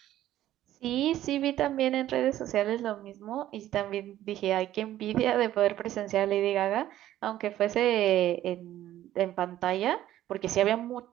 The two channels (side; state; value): left; quieter; 13.1 dB